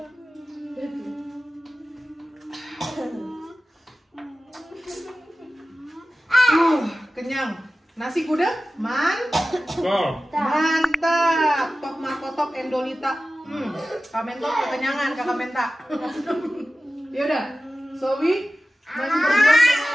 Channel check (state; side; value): normal; both; correlation 0.95